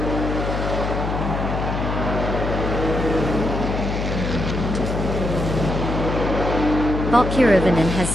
Bot Kirovanen has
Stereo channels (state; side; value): noise; left; hum, 2 dB below the sound